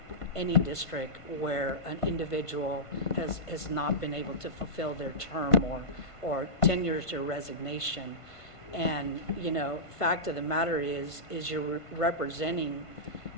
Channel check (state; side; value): late; right; 1.5 ms